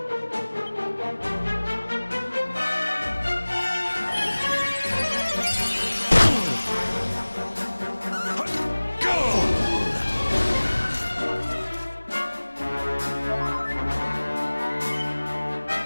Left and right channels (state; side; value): inverted; both; correlation -1.00